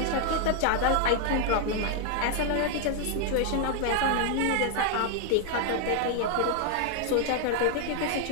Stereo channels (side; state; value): both; different; correlation 0.00